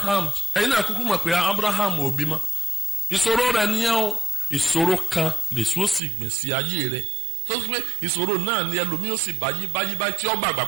ẹ̀yin náà kúkú mọ̀ pé Abraham ò bímọ. ìṣòro rẹ̀ nìyẹn o. ìṣòro kan lèṣu sì gbìn sí ayé rẹ̀ tó ti pé ìṣòro náà ni ẹlòmíì ó sì báyìí tí ó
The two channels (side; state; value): left; drops out; at 6.0 s